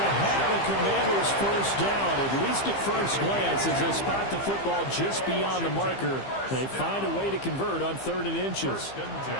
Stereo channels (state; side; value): late; right; 15 ms